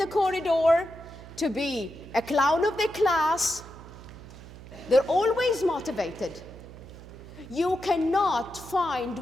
corridor, to be a clown of the class. They're always motivated. You cannot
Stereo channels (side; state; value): right; noise; hum, 16 dB below the sound